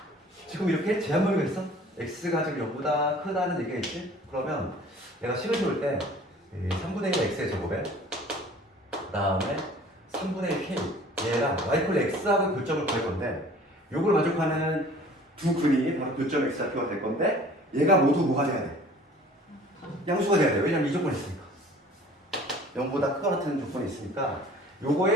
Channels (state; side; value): normal; both; correlation 0.49